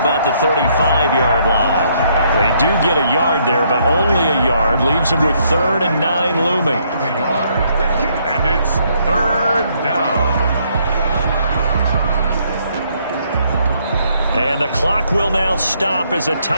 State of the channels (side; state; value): both; inverted; correlation -0.70